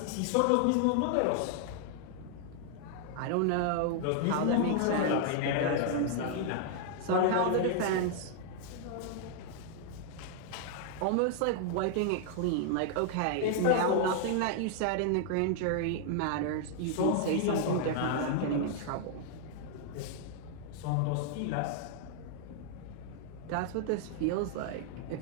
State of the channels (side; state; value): both; different; correlation 0.00